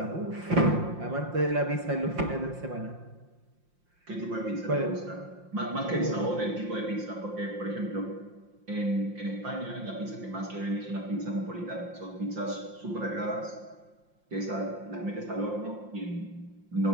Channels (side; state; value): left; late; 5.7 ms